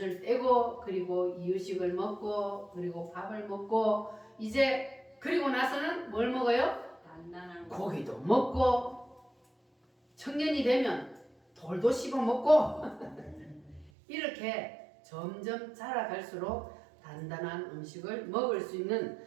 떼고 그리고 이유식을 먹고 그리고 밥을 먹고 이제 그리고 나서는 뭘 먹어요? 고기도 먹고 청년이 되면 돌도 씹어 먹고 이렇게 점점 자라갈수록 단단한 음식을 먹을 수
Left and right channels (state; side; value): drops out; left; at 13.9 s